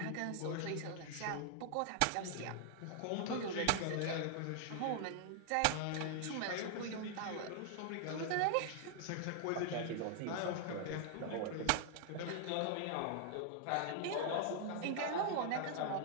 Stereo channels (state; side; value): different; both; correlation 0.00